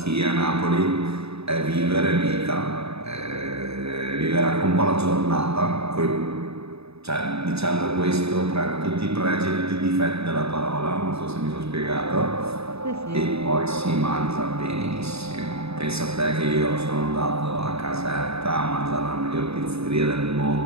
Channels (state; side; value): late; left; 0.79 ms